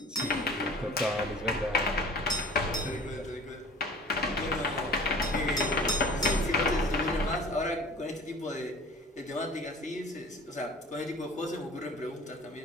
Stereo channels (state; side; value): normal; both; correlation 0.46